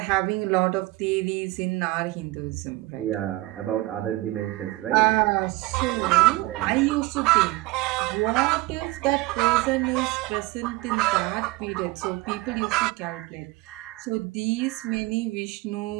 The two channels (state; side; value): quieter; left; 20.6 dB